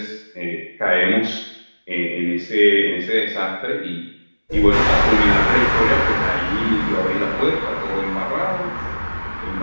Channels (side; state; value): both; inverted; correlation -1.00